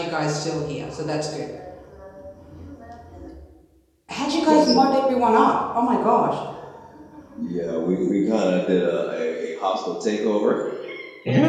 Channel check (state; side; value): identical; both; correlation 1.00